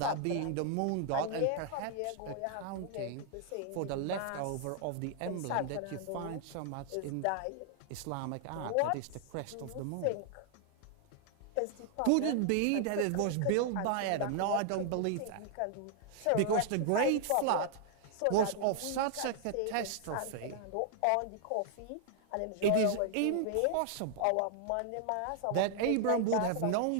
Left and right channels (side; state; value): both; different; correlation 0.00